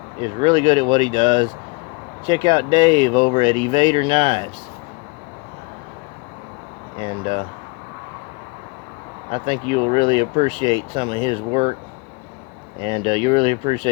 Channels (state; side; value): quieter; right; 28.6 dB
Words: is really good at what he does. Check out Dave over at Evader Knives. And I think you'll really appreciate some of his work, and you'll really